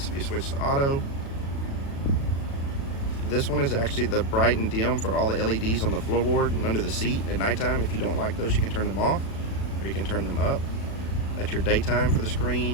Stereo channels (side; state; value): right; late; 36 ms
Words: if you switch to auto. This one is actually the bright and dim for all the LEDs on the floorboard and under the seat at nighttime. If you don't like those, you can turn them off, or you can turn them up. That's your daytime for the